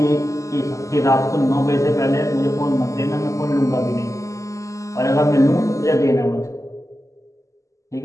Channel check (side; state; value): right; late; 0.16 ms